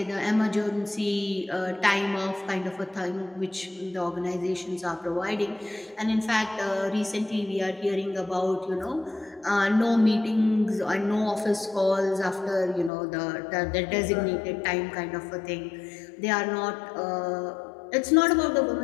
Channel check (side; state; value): right; drops out; at 12.9 s